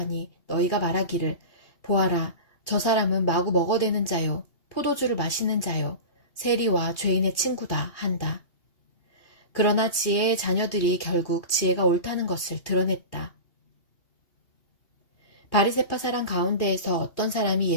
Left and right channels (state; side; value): late; right; 2.8 ms